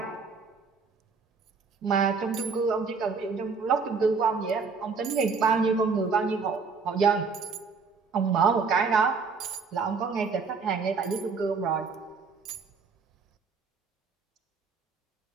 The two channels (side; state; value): left; quieter; 5.0 dB